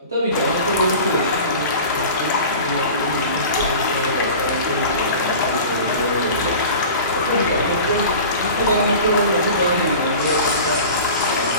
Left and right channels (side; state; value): both; inverted; correlation -0.37